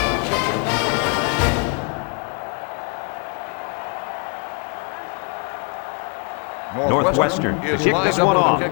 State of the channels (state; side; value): quieter; right; 37.0 dB